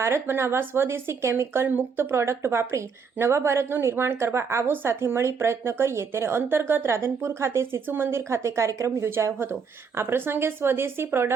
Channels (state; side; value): quieter; left; 5.8 dB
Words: બનાવવા, સ્વદેશી કેમિકલ મુક્ત પ્રોડક્ટ વાપરી નવા ભારતનું નિર્માણ કરવા આવો સાથે મળી પ્રયત્ન કરીએ। તેને અંતર્ગત રાધનપુર ખાતે શિશુ મંદિર ખાતે કાર્યક્રમ યોજાયો હતો। આ પ્રસંગે સ્વદેશી